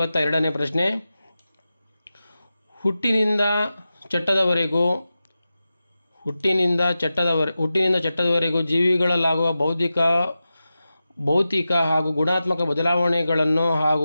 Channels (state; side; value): inverted; both; correlation -0.93